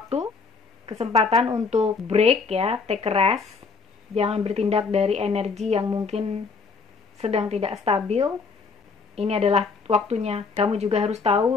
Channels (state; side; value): quieter; right; 4.8 dB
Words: kesempatan untuk break ya, take a rest. Jangan bertindak dari energi yang mungkin sedang tidak stabil. Ini adalah waktunya. Kamu juga harus